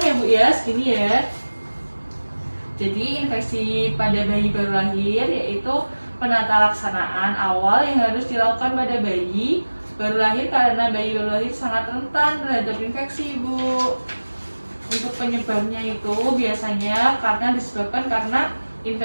ya Bu ya, segini ya. Jadi infeksi pada bayi baru lahir yaitu penata laksanaan awal yang harus dilakukan pada bayi baru lahir karena bayi baru lahir sangat rentan terhadap infeksi, Bu. Untuk penyebabnya itu biasanya disebabkan karena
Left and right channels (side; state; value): both; inverted; correlation -1.00